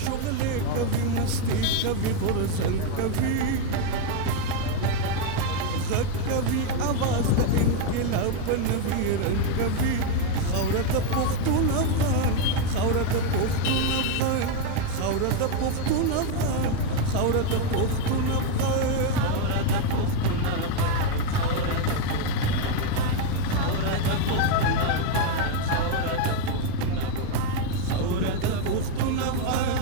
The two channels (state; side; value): different; both; correlation 0.01